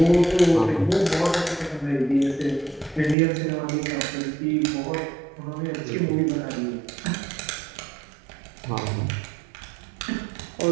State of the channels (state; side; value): drops out; left; at 3.2 s